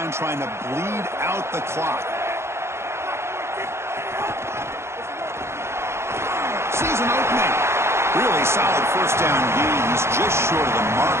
trying to bleed out the clock. Sees an opening. Really solid first down gain. He's just short of the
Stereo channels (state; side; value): late; left; 0.13 ms